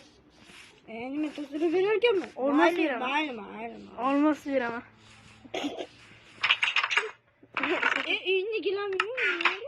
Nima tozalab berarkanman? Olmos beraman. Mayli. Olmos beraman. Uyni gilammi?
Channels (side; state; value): both; identical; correlation 1.00